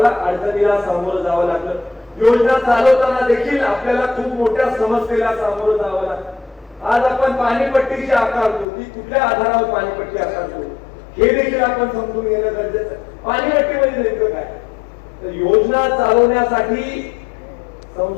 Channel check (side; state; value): right; drops out; at 8.7 s